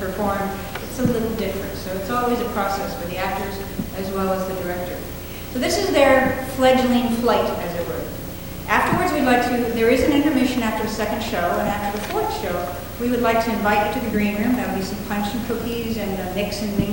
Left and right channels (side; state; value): both; identical; correlation 1.00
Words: it's a little different. So it's always a process for the actors as well as the director. So this is their fledgling flight, as it were. Afterwards, there is an intermission after the 2nd show, and after the 4th show, we would like to invite you to the green room. There'll be some punch and cookies and a mix and